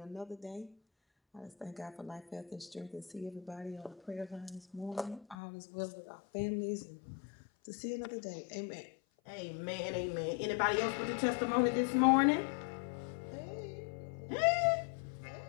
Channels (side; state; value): right; drops out; at 5.4 s